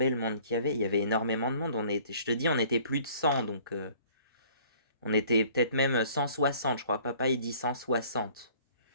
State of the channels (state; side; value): inverted; both; correlation -0.54